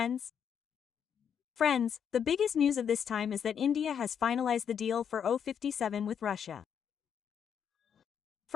Friends, the biggest news of this time is that India has finalized the deal for O-57 with Russia.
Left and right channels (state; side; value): quieter; right; 7.9 dB